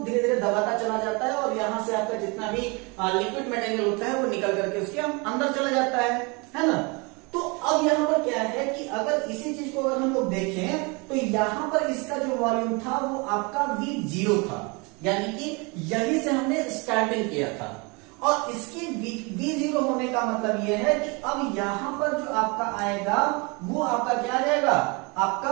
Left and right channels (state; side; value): quieter; left; 29.2 dB